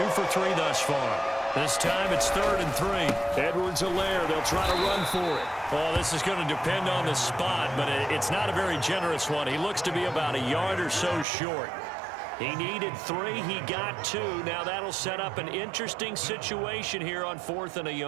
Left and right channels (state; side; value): drops out; left; at 11.2 s